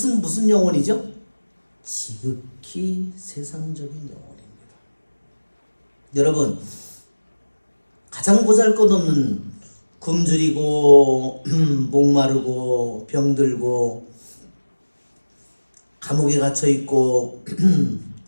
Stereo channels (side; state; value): both; inverted; correlation -1.00